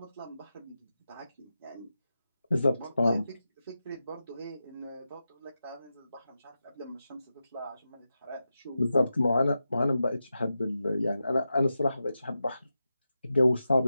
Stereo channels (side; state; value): both; inverted; correlation -0.90